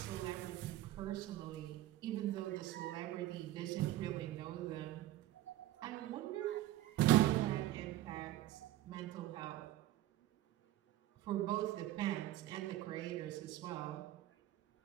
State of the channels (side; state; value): left; quieter; 14.4 dB